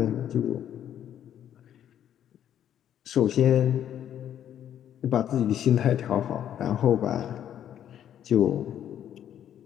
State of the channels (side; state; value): right; quieter; 10.3 dB